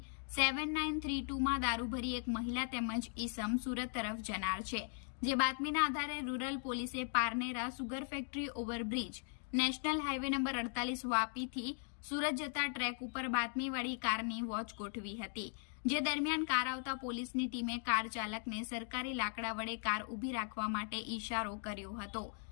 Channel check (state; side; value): silent; right; 52 dB below the other